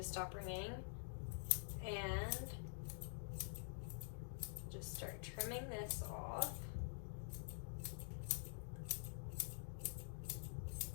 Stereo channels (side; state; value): right; silent; digital silence